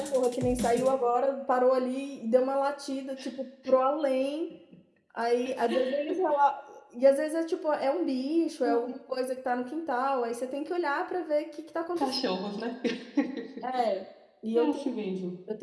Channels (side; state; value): both; identical; correlation 1.00